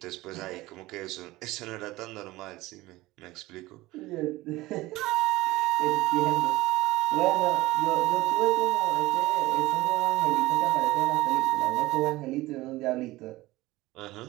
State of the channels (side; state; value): left; quieter; 18.8 dB